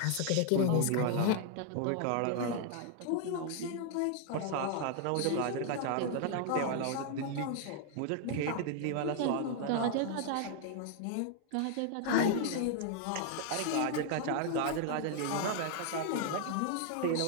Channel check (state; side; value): different; both; correlation 0.00